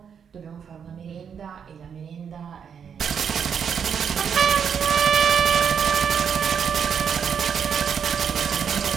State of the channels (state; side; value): quieter; left; 7.3 dB